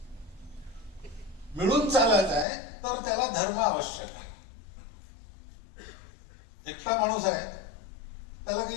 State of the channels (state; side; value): drops out; right; at 2.5 s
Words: मिळून चालायचं आहे. तर त्याला धर्म आवश्यक आहे. एकटा माणूस आहे त्याला